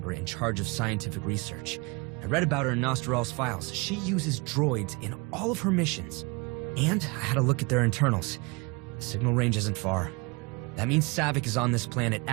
in charge of scientific research. I read about her in Nostral's files. She uses droids in all of her missions. And I had a look at their internals. The signal range isn't far. That means Saavik is on this planet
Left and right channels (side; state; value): left; quieter; 28.2 dB